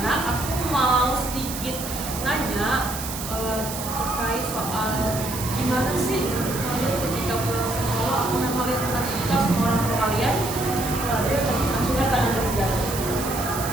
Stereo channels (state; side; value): noise; right; hiss, 8 dB below the sound